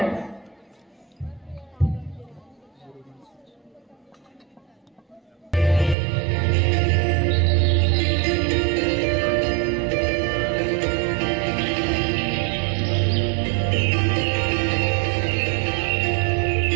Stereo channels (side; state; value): left; drops out; at 6.0 s